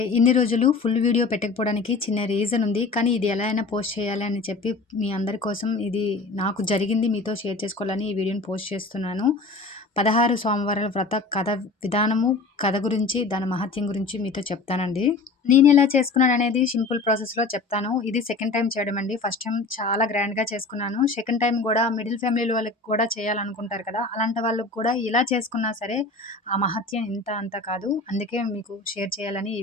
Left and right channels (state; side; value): quieter; right; 3.7 dB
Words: ఇన్ని రోజులు ఫుల్ వీడియో పెట్టకపోవడానికి చిన్న రీజన్ ఉంది. కానీ ఇది ఎలా అయినా పోస్ట్ చేయాలి అని చెప్పి మీ అందరి కోసం ఇది నాకు జరిగింది మీతో షేర్ చేసుకోవాలని ఈ వీడియోని పోస్ట్ చేస్తున్నాను. 16 సోమవారాల వ్రత కథ విధానము, కథ గురించి, దాని మహత్యం గురించి మీతో చెప్తానండి. నేనెలా చేసుకున్నాననేది సింపుల్ ప్రాసెస్‌లో చెప్తాను. ఇది సెకండ్ టైమ్ చేయడం అండి. ఫస్ట్ టైమ్ చాలా గ్రాండ్‌గా చేసుకున్నాను. సెకండ్ టైమ్ గూడా మిడిల్ ఫ్యామిలీల వాళ్ళకి కూడా చేయాలనుకుంటారు కదా! అలాంటి వాళ్ళకి కూడా ఇలా చేసుకున్నా సరే ఆ మహత్యం ఇంత అంత కాదు. అందుకే మీకు షేర్ చేయాలని